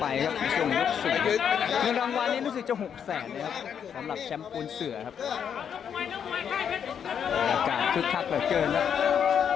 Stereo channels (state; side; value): quieter; right; 8.0 dB